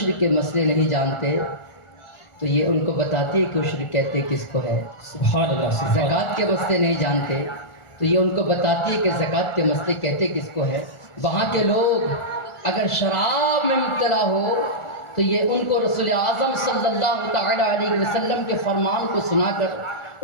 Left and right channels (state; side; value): late; right; 1.4 ms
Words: کے مسئلے نہیں جانتے تو یہ ان کو بتاتی ہے کہ عشر کہتے کس کو ہے. سبحان اللہ، سبحان اللہ. زکوٰۃ کے مسئلے نہیں جانتے تو یہ ان کو بتاتی ہے کہ زکوٰۃ کے مسئلے کہتے کس کو ہے. وہاں کے لوگ اگر شراب میں مبتلا ہو تو یہ ان کو رسول اعظم صلی اللہ تعالی علیہ وسلم کے فرمان کو سنا کر